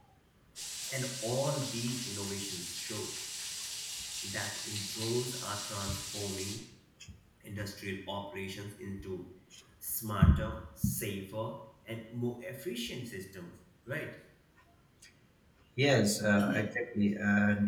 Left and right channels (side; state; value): both; identical; correlation 1.00